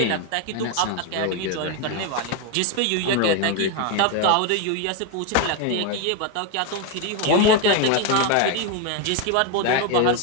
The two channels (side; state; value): both; different; correlation 0.02